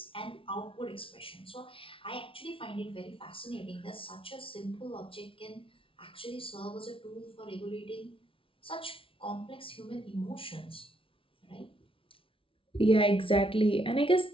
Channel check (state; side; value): late; right; 0.26 ms